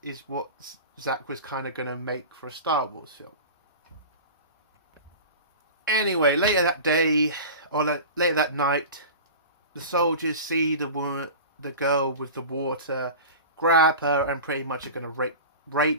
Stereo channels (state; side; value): inverted; both; correlation -0.33